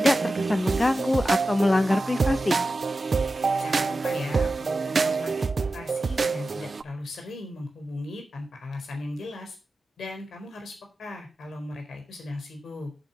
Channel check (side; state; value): both; normal; correlation 0.93